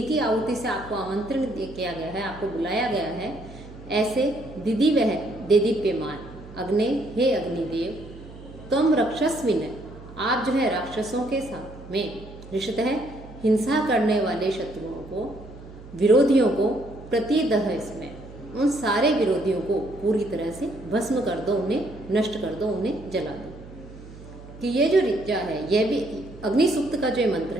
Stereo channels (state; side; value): noise; right; hum, 17 dB below the sound